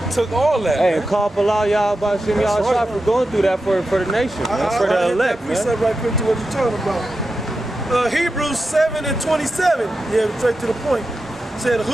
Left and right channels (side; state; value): both; normal; correlation 0.90